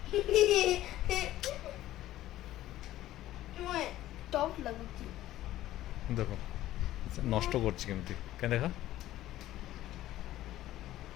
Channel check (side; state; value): right; quieter; 14.4 dB